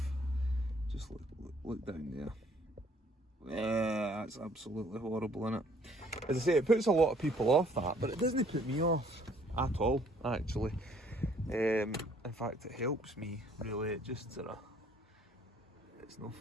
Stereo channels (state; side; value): normal; both; correlation 0.61